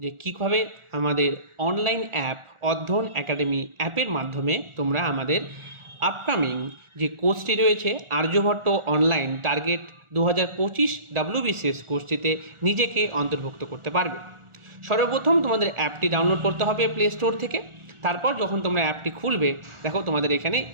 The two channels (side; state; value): left; late; 1.4 ms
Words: যে কীভাবে আমাদের অনলাইন অ্যাপ অধ্যয়ন একাডেমি অ্যাপের মাধ্যমে তোমরা আমাদের আপকামিং যে কোর্সটি রয়েছে আর্যভট্ট অনলাইন টার্গেট 2025 WBCS কোর্সটিতে নিজেকে অন্তর্ভুক্ত করতে পারবে। সর্বপ্রথম তোমাদের অ্যাপটি ডাউনলোড করতে হবে প্লে স্টোর থেকে। তারপর যখন তোমরা অ্যাপটি খুলবে, দেখো তোমাদের এখানে